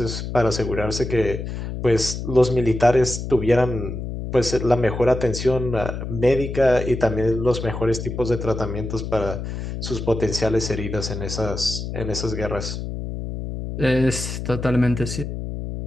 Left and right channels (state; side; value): noise; left; hum, 6 dB below the sound